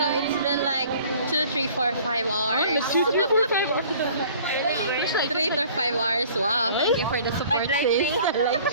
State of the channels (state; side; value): inverted; both; correlation -0.51